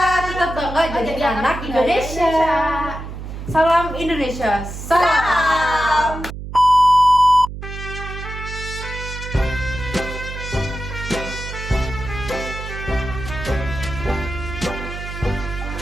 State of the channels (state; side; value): noise; right; hum, 9 dB below the sound